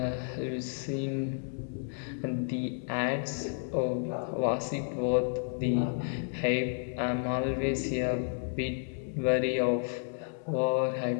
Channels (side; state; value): right; silent; 57 dB below the other